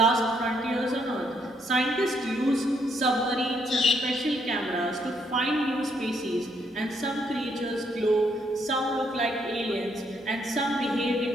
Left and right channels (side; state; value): both; normal; correlation 0.73